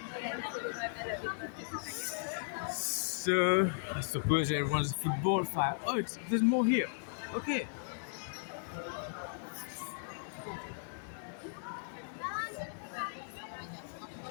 So I suppose everyone's a football fan. Oh, there's more here. Okay.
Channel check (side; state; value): right; silent; digital silence